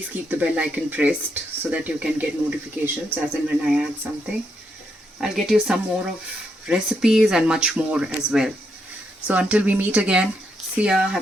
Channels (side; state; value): both; normal; correlation 0.79